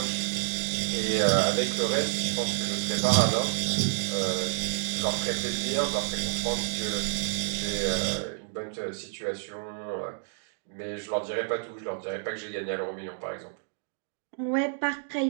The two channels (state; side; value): silent; left; digital silence